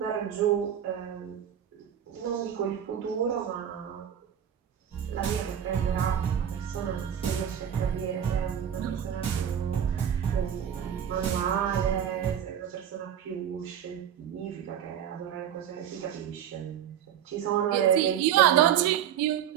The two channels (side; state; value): left; quieter; 9.5 dB